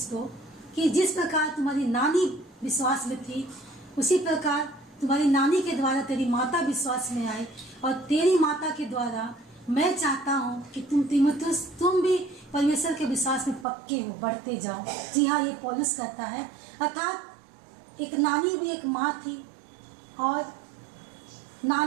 को कि जिस प्रकार तुम्हारी नानी विश्वास में थी, उसी प्रकार तुम्हारी नानी के द्वारा तेरी माता विश्वास में आई और तेरी माता के द्वारा मैं चाहता हूँ कि तुम तीमुथियुस, तुम भी परमेश्वर के विश्वास में पक्के हो, बढ़ते जाओ। जी हाँ, ये पौलुस कहता है। अर्थात एक नानी भी एक माँ थी और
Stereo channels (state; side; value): drops out; left; at 13.7 s